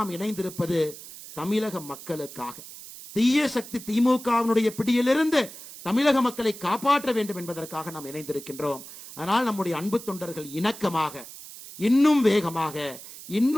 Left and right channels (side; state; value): right; noise; hiss, 15 dB below the sound